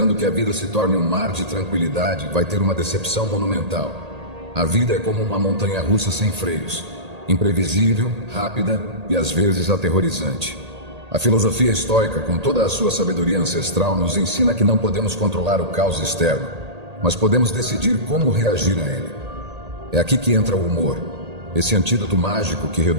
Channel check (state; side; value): late; left; 1.8 ms